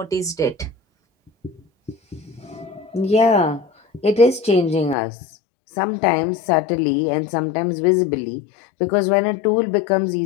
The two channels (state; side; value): drops out; right; at 5.0 s